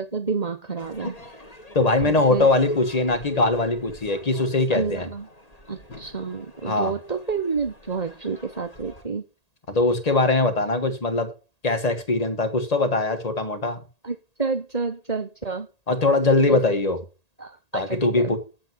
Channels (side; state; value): right; late; 1.8 ms